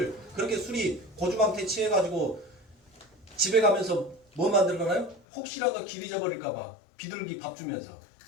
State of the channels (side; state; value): right; drops out; at 5.2 s